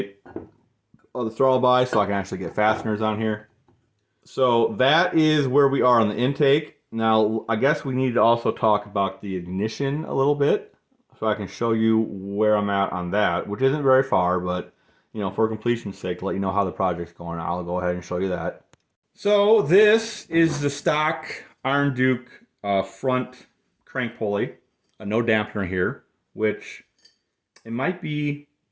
of the throttle body so I can actually get fasteners on here. So that is where we are on the intake. Now, I guess we need to also talk about the ignition a little bit, so I can show you where I'm at on that, which isn't very far, but, you know, for completion's sake, to let you know how the project's going, I'll go ahead and show you that. So this is the stock Iron Duke front crank pulley, no dampener here, which it might be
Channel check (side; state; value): both; identical; correlation 1.00